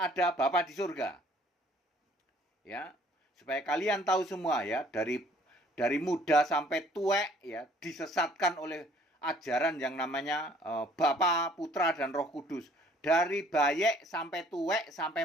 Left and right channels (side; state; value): both; normal; correlation 0.58